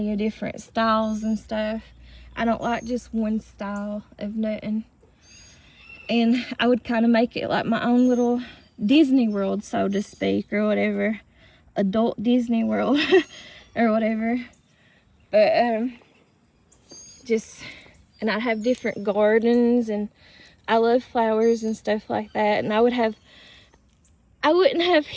of different styles and stuff. I don't like just one style of nothing. And I would kind of make it like my own little Disney World, so to speak, or whatever. Adult Disney World or whatever. But and I'd have different gardens, and I love flowers and stuff like that. And I wouldn't have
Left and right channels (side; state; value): both; identical; correlation 1.00